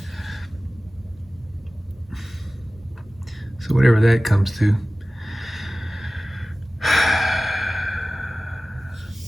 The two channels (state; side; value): normal; both; correlation 0.97